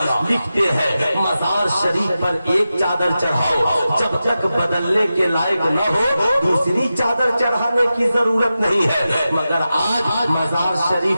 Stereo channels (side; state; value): both; inverted; correlation -0.92